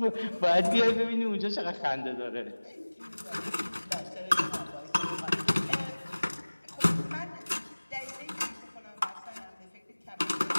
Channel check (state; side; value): inverted; both; correlation -1.00